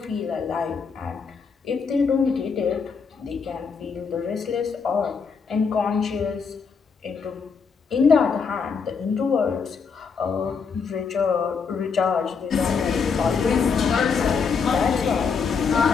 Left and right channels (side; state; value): right; quieter; 5.6 dB